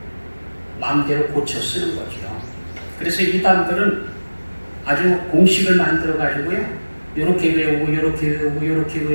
마음대로 고쳐 쓰는 거죠. 그래서 이단들은 아주 공식을 만들어 가지고요, 이렇게 외우고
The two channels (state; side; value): inverted; both; correlation -1.00